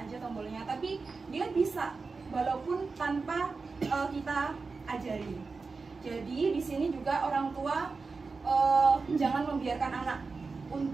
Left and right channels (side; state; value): left; quieter; 4.3 dB